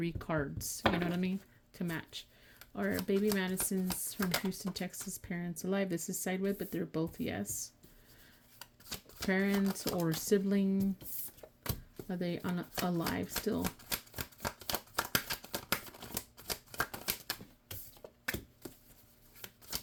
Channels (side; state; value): both; identical; correlation 1.00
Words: cards. You know what I mean? To match. Are baby Madison's from Houston, Texas parents alive? This is sideways, but they're both yes. Parents or sibling, are they alive still?